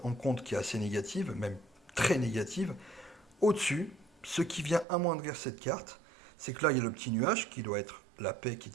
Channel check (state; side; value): drops out; left; at 4.9 s